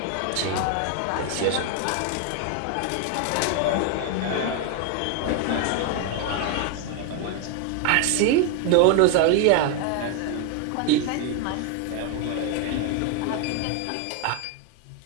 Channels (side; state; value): both; different; correlation 0.01